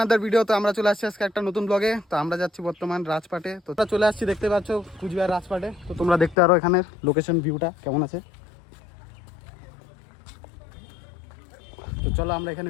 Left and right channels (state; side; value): drops out; right; at 6.4 s